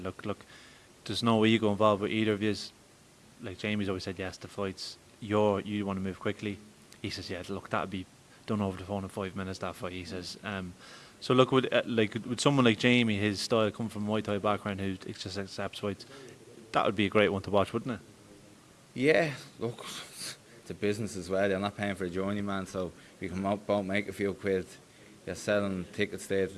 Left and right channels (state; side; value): identical; both; correlation 1.00